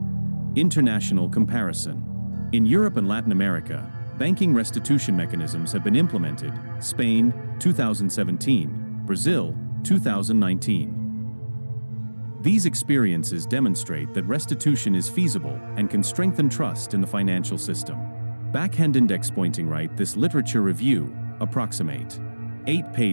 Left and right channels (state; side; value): inverted; both; correlation -1.00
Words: International comparison. In Europe and Latin America, banking restitution mechanisms have been implemented. Spain, 2017, Brazil, 2019. These experiences demonstrate that restitution is feasible and can strengthen trust in the financial system. Backhand index pointing right. This literature review, approximate 8